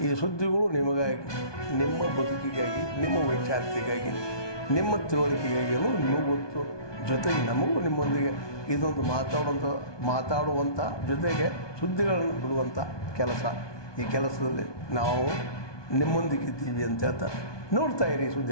ಈ ಸುದ್ದಿಗಳು ನಿಮಗಾಗಿ, ನಿಮ್ಮ ಬದುಕಿಗಾಗಿ, ನಿಮ್ಮ ವೈಚಾರಿಕೆಗಾಗಿ, ನಿಮ್ಮ ತಿಳುವಳಿಕೆಗಾಗಿಯೂ ಇನ್ನೂ ಗೊತ್ತು. ಜೊತೆಗೆ ನಮಗೂ ನಿಮ್ಮೊಂದಿಗೆ ಇದೊಂದು ಮಾತಾಡುವಂಥ ಜೊತೆಗೆ ಸುದ್ದಿಗಳನ್ನು ಬಿಡುವಂಥ ಕೆಲಸ. ಈ ಕೆಲಸದಲ್ಲಿ ನಾವು ನಿಮ್ಮೊಂದಿಗಿದ್ದೀವಿ ಅಂತ ಹೇಳ್ತಾ ನೋಡ್ತಾ ಇರಿ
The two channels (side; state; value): right; late; 1.2 ms